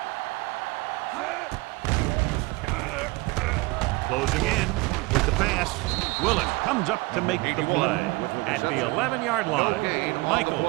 Closing in with the pass. Willis comes up to make the play at the 11-yard line.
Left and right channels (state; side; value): quieter; left; 23.5 dB